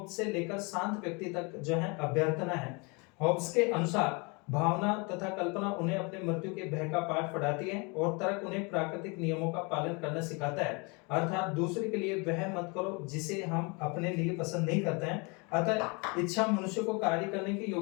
से लेकर शांत व्यक्ति तक जो है अभ्यर्थना है। हॉब्स के अनुसार भावना तथा कल्पना उन्हें अपने मृत्यु के भय का पाठ पढ़ाती है और तर्क उन्हें प्राकृतिक नियमों का पालन करना सिखाता है। अर्थात दूसरे के लिए वह मत करो जिसे हम अपने लिए पसंद नहीं करते हैं। अतः इच्छा मनुष्य को कार्य करने के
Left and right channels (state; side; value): quieter; right; 30.2 dB